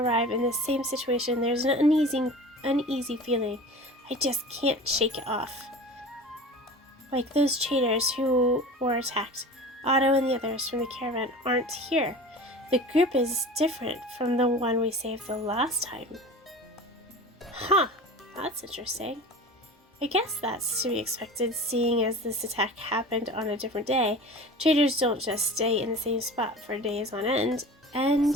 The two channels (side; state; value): both; normal; correlation 0.37